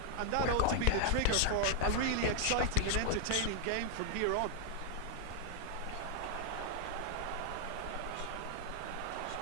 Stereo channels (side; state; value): both; different; correlation 0.00